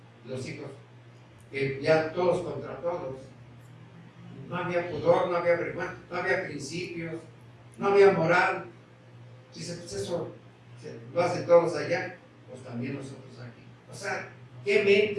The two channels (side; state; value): both; identical; correlation 1.00